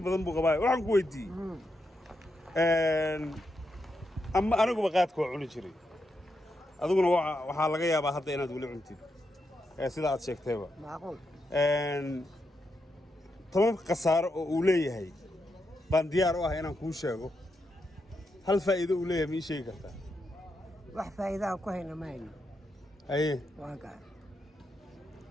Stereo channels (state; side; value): normal; both; correlation 0.84